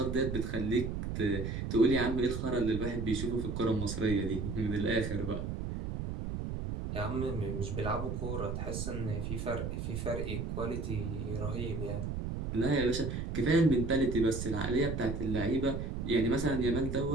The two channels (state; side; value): noise; right; rumble, 4 dB below the sound